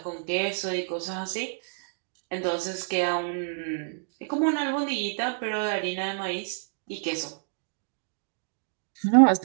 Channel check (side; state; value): left; silent; digital silence